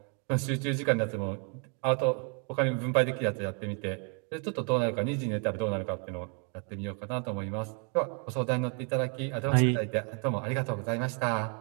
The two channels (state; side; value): quieter; left; 38.4 dB